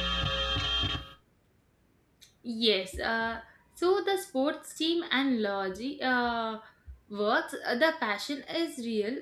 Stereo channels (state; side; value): identical; both; correlation 1.00